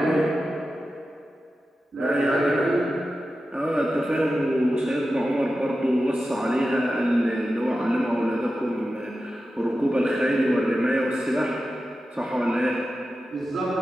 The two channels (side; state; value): both; normal; correlation 0.92